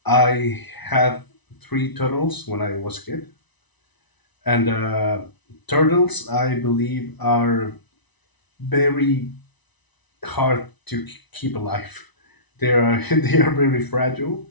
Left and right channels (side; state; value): right; late; 1.0 ms